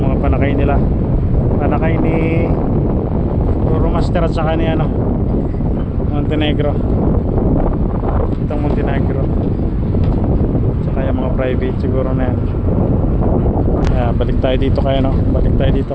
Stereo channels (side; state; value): both; identical; correlation 1.00